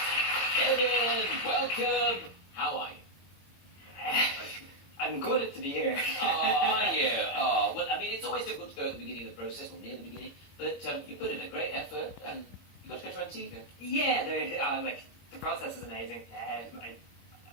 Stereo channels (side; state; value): right; late; 21 ms